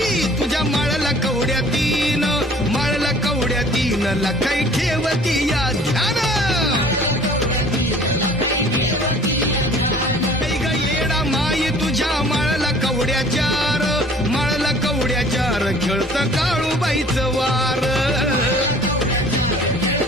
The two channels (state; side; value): normal; both; correlation 0.51